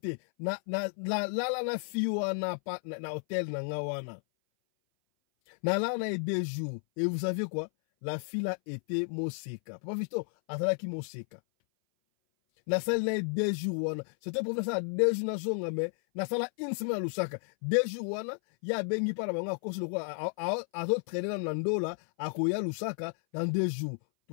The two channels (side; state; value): right; silent; 56 dB below the other